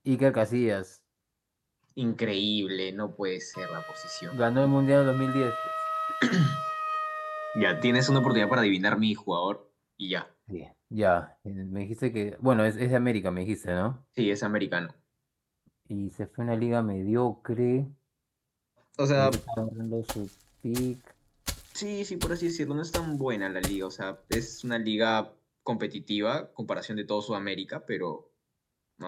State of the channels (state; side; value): identical; both; correlation 1.00